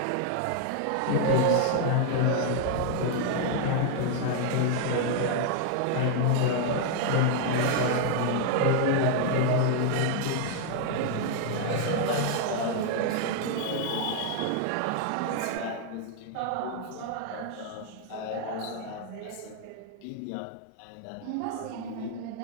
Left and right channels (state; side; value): different; both; correlation 0.00